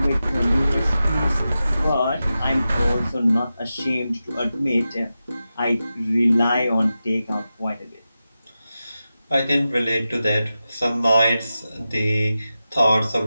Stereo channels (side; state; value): both; inverted; correlation -0.92